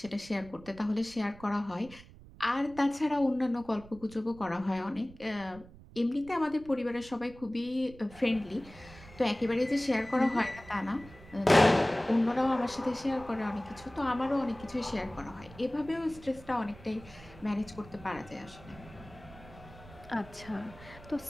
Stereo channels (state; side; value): noise; right; rumble, 20 dB below the sound